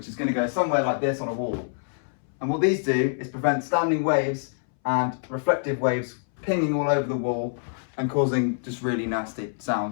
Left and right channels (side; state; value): right; silent; 61 dB below the other